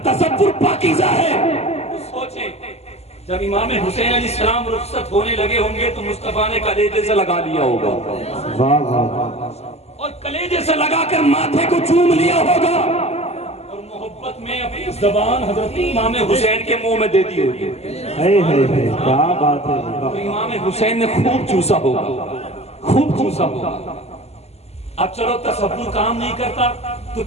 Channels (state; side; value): late; right; 0.30 ms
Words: تصور پاکیزہ ہے تو سوچیں جب امام حسین علیہ السلام رخصت ہونے لگے ہوں گے تو مصطفیٰ نے کلیجے سے لگا لیا ہوگا، واہ واہ واہ، اور کلیجے سے لگا کر ماتھے کو چوم لیا ہوگا اور محبت میں اپنی زبان حضرت امام حسین کے منہ میں دے دی ہوگی۔ کیا بات ہے، تو امام حسین نے خوب چوسا ہوگا، خوب چوسا ہوگا۔ اب چلو تصور کام نہیں کرتا تو